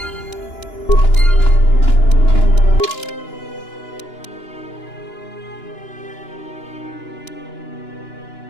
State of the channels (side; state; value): right; late; 2.9 ms